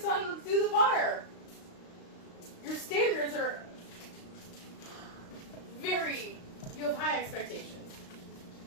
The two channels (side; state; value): right; late; 35 ms